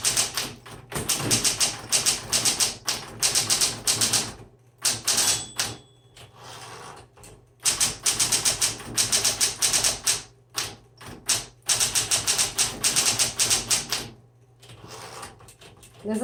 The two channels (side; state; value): both; identical; correlation 1.00